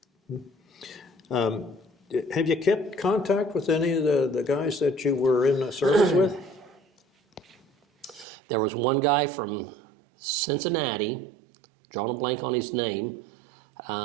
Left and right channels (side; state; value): left; drops out; at 8.2 s